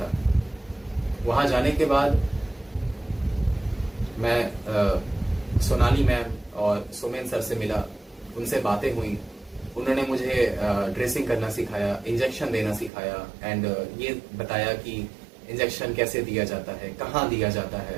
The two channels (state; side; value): drops out; left; at 12.9 s